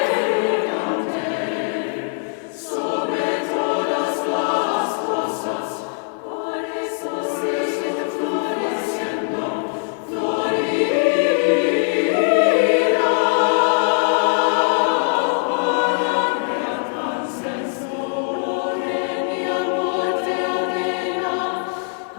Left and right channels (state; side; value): silent; right; 57 dB below the other